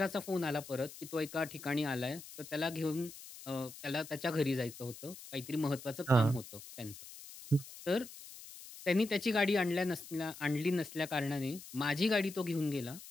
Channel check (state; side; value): noise; left; hiss, 15 dB below the sound